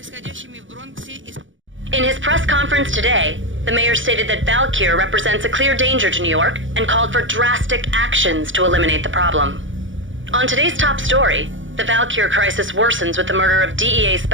In his press conference today, the mayor stated that Valkyr represents a clear danger to New York and called for drastic actions to eliminate the problem. On today's top story, the Valkyr crisis worsens with the murder of DEA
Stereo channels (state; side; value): late; left; 0.56 ms